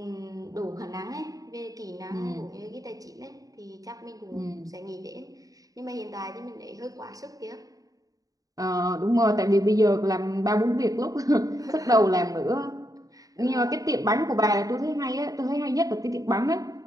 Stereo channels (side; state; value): left; late; 0.17 ms